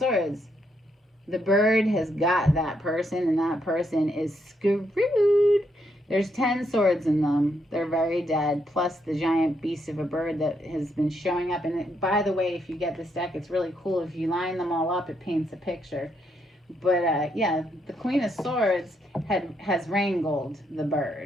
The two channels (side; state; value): both; normal; correlation 0.77